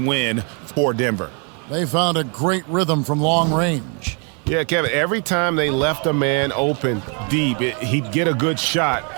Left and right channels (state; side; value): quieter; left; 38.3 dB